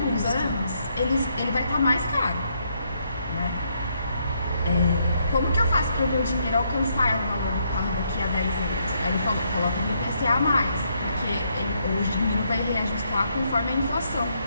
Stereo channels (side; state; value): both; inverted; correlation -0.74